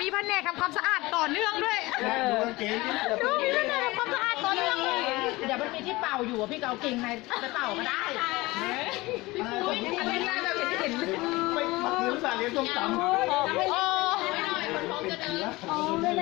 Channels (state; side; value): quieter; right; 21.1 dB